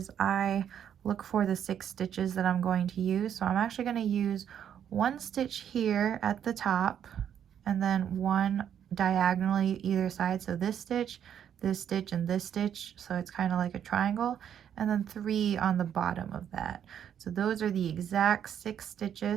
I look for the 6 stitches that I'm going to use. So I'm actually going to use 1 stitch here at the top, and then 1 diagonally either side. So this stitch, and this stitch, so it's kind of like a triangle, and then 3 on the bottom of that. So those are the exact 6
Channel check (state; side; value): quieter; left; 9.1 dB